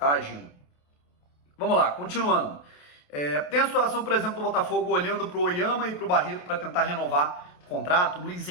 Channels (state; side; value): late; right; 28 ms